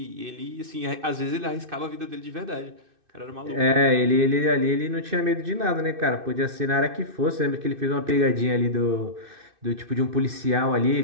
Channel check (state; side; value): late; left; 2.6 ms